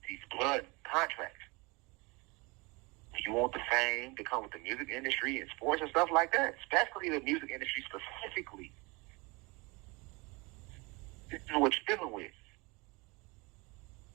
blood contracts. When you want the fame to come with the music industry and sports and stuff like that, especially the music industry specifically, this is what you're dealing with.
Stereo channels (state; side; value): quieter; left; 26.4 dB